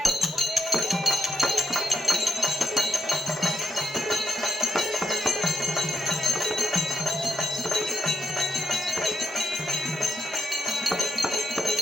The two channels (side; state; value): both; normal; correlation 0.80